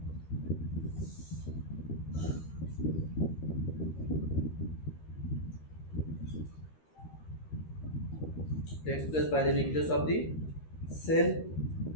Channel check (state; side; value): late; right; 13 ms